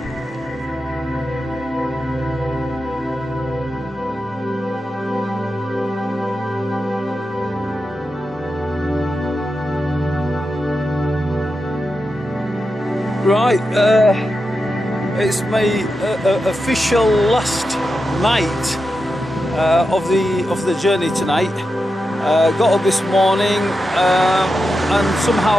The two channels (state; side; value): normal; both; correlation 0.89